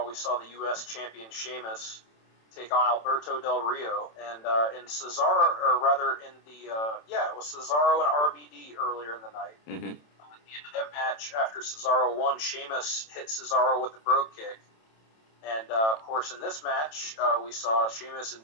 we saw the U.S. champion Sheamus take on Alberto Del Rio. And in Cesaro, or rather in the, it was Cesaro and RVD earlier in the night. Mm-hmm. At the end of that match, after Cesaro won, Sheamus hit Cesaro with a brogue kick. And, of course, in this match, we saw Sheamus and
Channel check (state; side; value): late; right; 27 ms